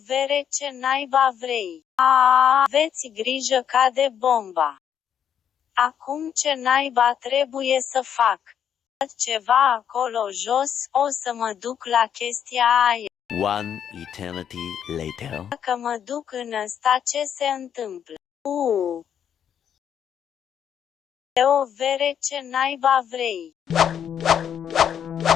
vere, ce naiba vrei? Aveți grijă, cade bomba. Acum ce naiba trebuie să fac? Ceva acolo jos, o să mă duc la chestia aia. One eternity later. Dacă mă duc în ăsta, ce se întâmplă? O vere, ce naiba vrei?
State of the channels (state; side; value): quieter; right; 8.8 dB